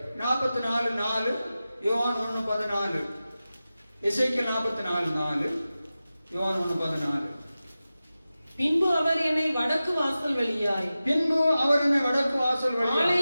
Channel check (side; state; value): both; inverted; correlation -0.95